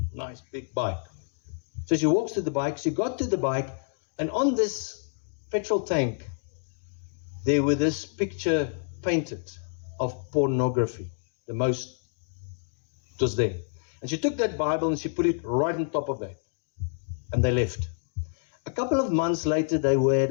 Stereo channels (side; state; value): right; silent; digital silence